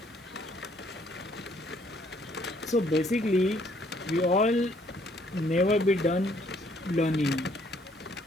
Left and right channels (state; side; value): normal; both; correlation 0.65